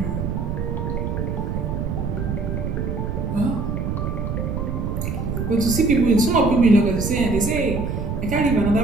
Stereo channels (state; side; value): noise; right; rumble, 2 dB below the sound